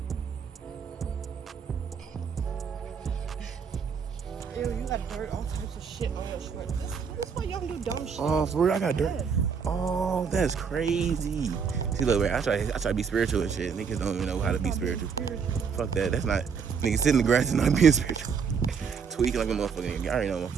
Ew, you got dirt, all types of shit on your shorts. That's why y'all do dumb shit. Oh, for real, I got dirt. Yes. Oh, that's crazy. See, look, man, I try to be spiritual and shit. Niggas don't even know how to be spiritual. Fuck that. That's not. Niggas sitting in the grass and not being spiritual. Tweaking like a motherfucker. Y'all already know.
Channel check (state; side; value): quieter; left; 6.2 dB